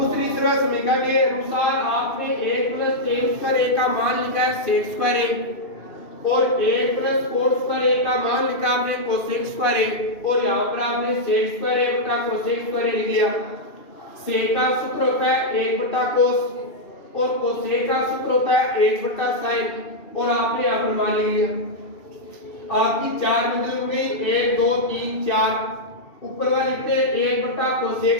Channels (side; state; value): right; late; 2.7 ms